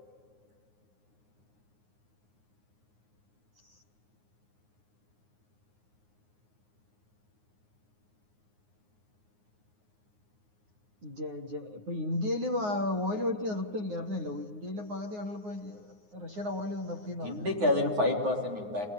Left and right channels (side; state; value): left; late; 9.6 ms